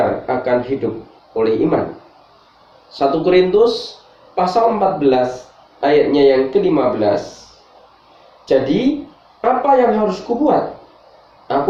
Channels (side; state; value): both; identical; correlation 1.00